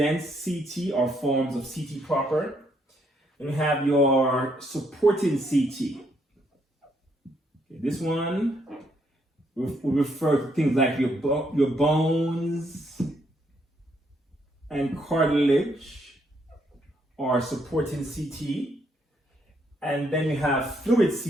CT are forms of CT proper. Then we have your supporting CT. Okay, this one will refer to things like your bones and cartilage are supporting CT. And then you have fluid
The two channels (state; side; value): normal; both; correlation 0.73